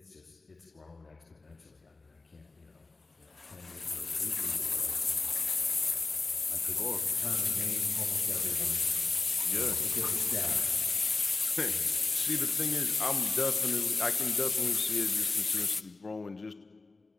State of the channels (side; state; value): right; quieter; 3.6 dB